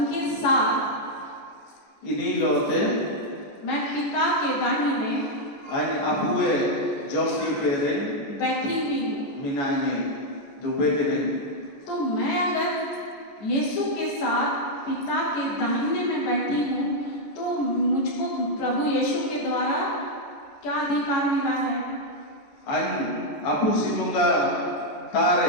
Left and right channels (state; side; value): late; right; 14 ms